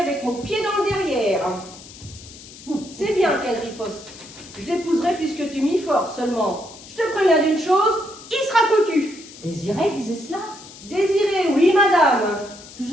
mon pied dans le derrière. C'est bien qu'elle riposte. Je l'épouserai puisque tu m'y forces, seulement. Je te préviens d'une chose, il sera cocu. Désiré disait cela? Désiré, oui, madame.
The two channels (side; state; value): left; noise; hiss, 18 dB below the sound